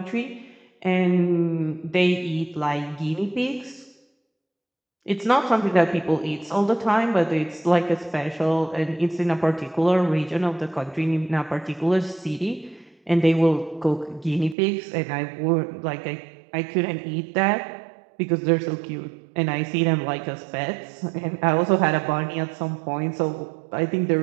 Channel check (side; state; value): left; drops out; at 14.6 s